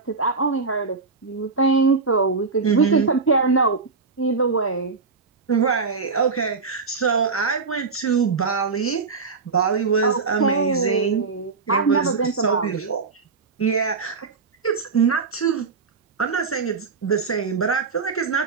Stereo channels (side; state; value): left; quieter; 4.7 dB